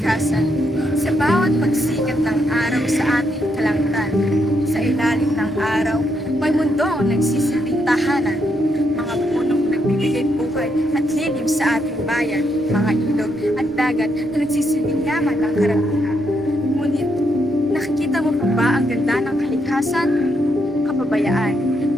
Sa bawat pagsikat ng araw sa ating kalangitan, sa ilalim ng araw, may mundong nagsisilbing tahanan. Mga punong nagbibigay buhay at lilim sa ating bayan, mga ilog at dagat na nagsisilbing yaman ng karamihan. Ngunit, nakikita mo pa ba ang ganda ng kalikasan? Kapabayaan,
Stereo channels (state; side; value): normal; both; correlation 0.78